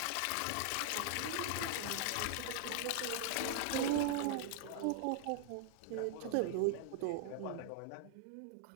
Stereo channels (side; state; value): both; different; correlation -0.01